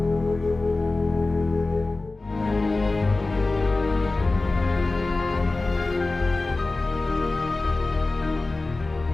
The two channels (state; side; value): quieter; right; 3.2 dB